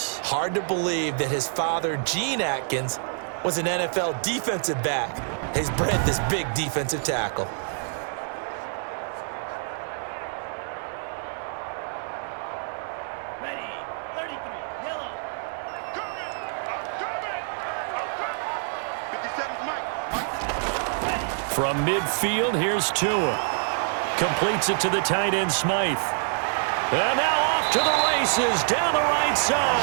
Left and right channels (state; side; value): silent; left; 61 dB below the other